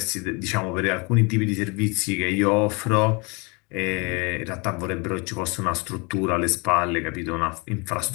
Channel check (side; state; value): right; quieter; 29.6 dB